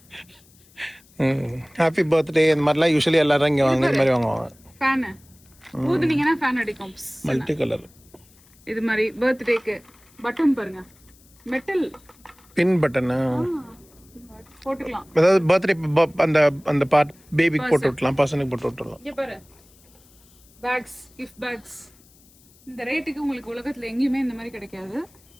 ஹாப்பி பர்த்டே இந்த மாதிரிலாம் யூஸ்வலி எல்லாரும் இங்கே வாங்க இந்த மாதிரி வாங்குவாங்க. ஃபேன் ஊதுனீங்கன்னா ஃபேன் அடிக்கும். மல்டி கலர் இது மாதிரி பர்த்டேக்கு பட்டன் பாருங்க, மெட்டல் பின் பட்டனு போட்டுக்கலாம். அதாவது பர்த்டே அந்த அந்த பார்ட் பேபிக்கு போட்டு விட்டலாம், பர்சனுக்கு போட்டு விட்டுலாம். இங்க பாரு பேக்ஸ், கிஃப்ட் பேக்ஸ். இந்த ரேட்டுக்கு உங்களுக்கு உலகத்துல எங்கேயுமே இந்த மாதிரி கிடைக்காது.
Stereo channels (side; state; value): left; noise; hiss, 28 dB below the sound